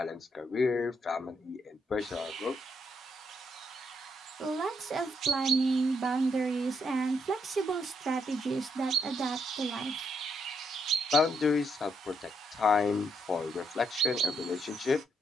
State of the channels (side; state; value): both; normal; correlation 0.76